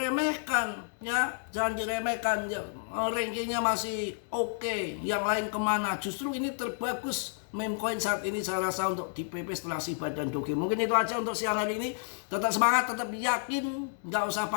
ya jangan diremehkan. Ya, rankingnya masih oke. Yang lain kemana? Justru ini terbagus meme coin saat ini saya rasa untuk di PP setelah Shiba dan Doge. Mungkin itu aja untuk siang hari ini. Tetap semangat, tetap yakin, nggak usah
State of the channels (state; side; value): silent; right; digital silence